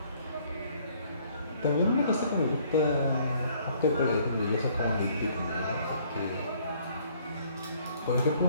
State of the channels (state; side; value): inverted; both; correlation -0.61